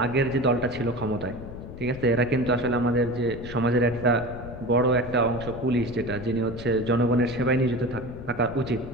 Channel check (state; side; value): noise; left; rumble, 12 dB below the sound